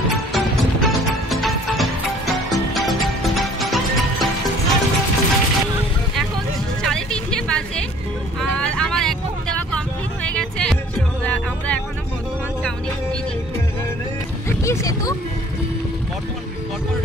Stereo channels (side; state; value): both; normal; correlation 0.54